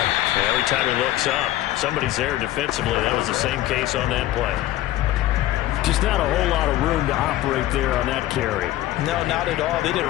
Yeah, every time he looks up, somebody's there defensively. That was the same case on that play. Just not a whole lot of room to operate there on that carry. No, not at all. They did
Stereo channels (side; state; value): right; quieter; 14.9 dB